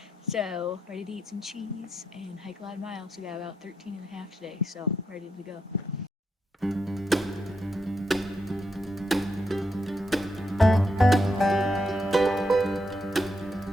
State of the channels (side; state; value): both; normal; correlation 0.81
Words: So, ready to eat some cheese and hike a lot of miles. We got about 13 and a half today, so ready to go.